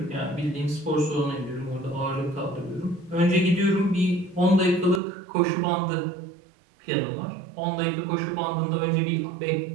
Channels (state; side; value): drops out; left; at 5.0 s